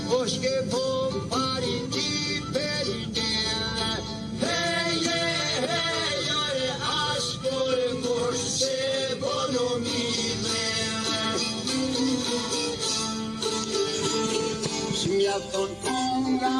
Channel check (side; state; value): both; identical; correlation 1.00